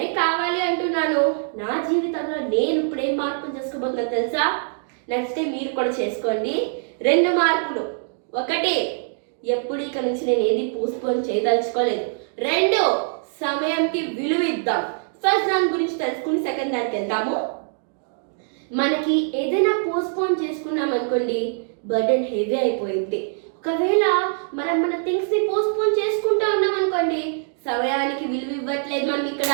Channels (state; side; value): silent; left; digital silence